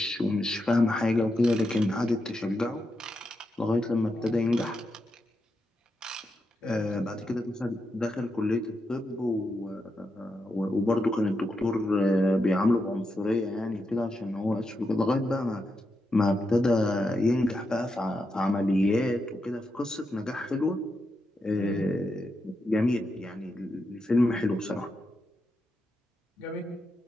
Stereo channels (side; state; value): both; normal; correlation 0.85